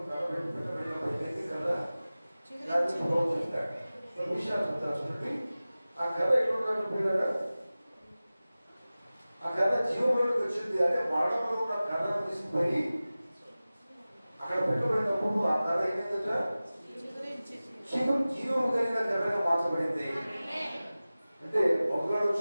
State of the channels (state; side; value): inverted; both; correlation -0.97